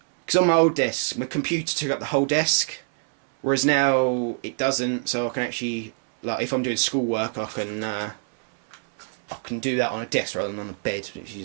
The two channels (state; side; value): silent; left; 62 dB below the other